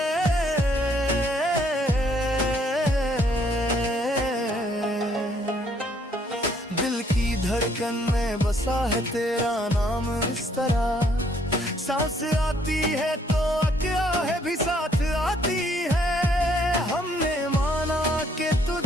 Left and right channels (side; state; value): both; normal; correlation 0.66